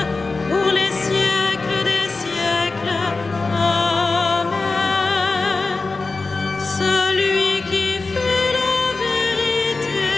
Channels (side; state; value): right; quieter; 3.8 dB